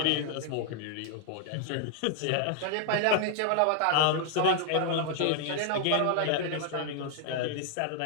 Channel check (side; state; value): both; different; correlation 0.00